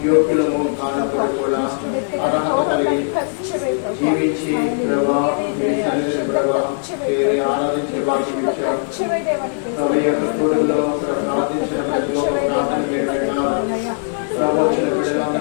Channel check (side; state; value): right; silent; 65 dB below the other